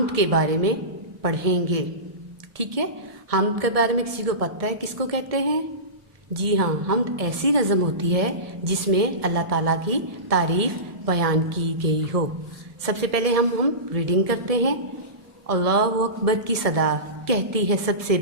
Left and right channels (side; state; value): left; late; 1.7 ms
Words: کے بارے میں پڑھیں گے، ٹھیک ہے؟ حمد کے بارے میں کسی کو پتہ ہے کس کو کہتے ہیں؟ جی ہاں، حمد ایسی نظم ہوتی ہے جس میں اللہ تعالیٰ کی تعریف بیان کی گئی ہو۔ سب سے پہلے ہم ریڈنگ کرتے ہیں۔ اللہ اکبر کی صدا کہتی ہے سب سے